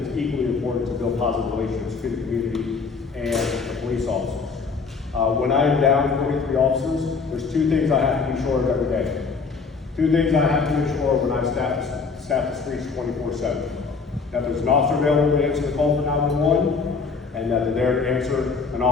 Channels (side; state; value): right; quieter; 4.9 dB